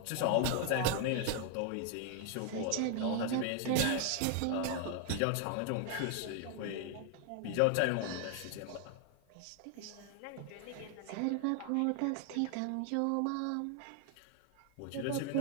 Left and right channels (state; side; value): different; both; correlation 0.00